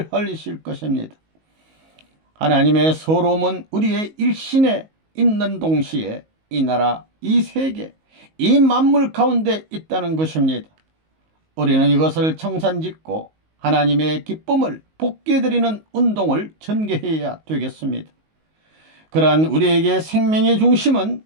흘리실 것입니다. 하나님의 서러움은 우리의 일신에 있는 동시에 이 나라, 이 세계, 이 만물 가운데 있다는 것입니다. 우리는 이것을 청산짓고 하나님의 기쁨을 복귀해드리는 운동을 전개해야 되겠습니다. 그러한 우리에게 생명의 중심은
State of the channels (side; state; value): left; late; 19 ms